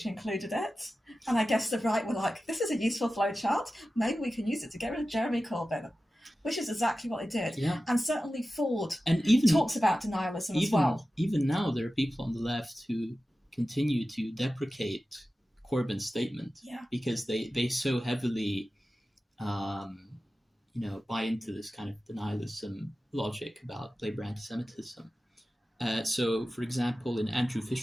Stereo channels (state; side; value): normal; both; correlation 0.94